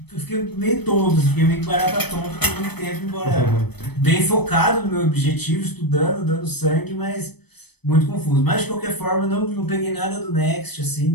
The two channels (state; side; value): late; right; 0.98 ms